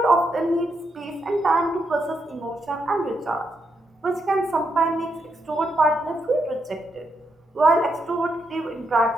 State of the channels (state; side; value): normal; both; correlation 0.80